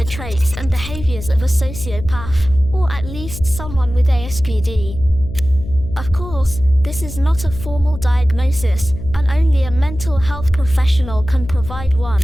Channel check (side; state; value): left; noise; hum, 11 dB below the sound